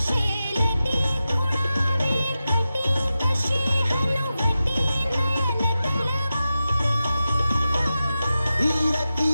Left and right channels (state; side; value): inverted; both; correlation -0.92